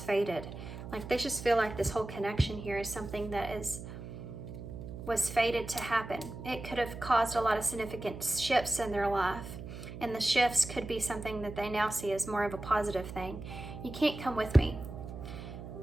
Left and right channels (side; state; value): right; noise; hum, 10 dB below the sound